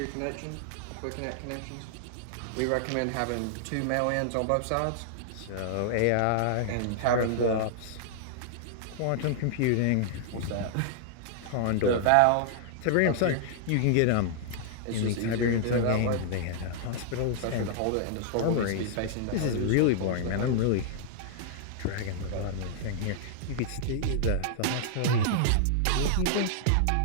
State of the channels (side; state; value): both; different; correlation -0.01